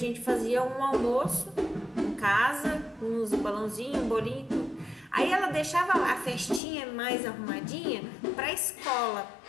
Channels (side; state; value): right; drops out; at 6.6 s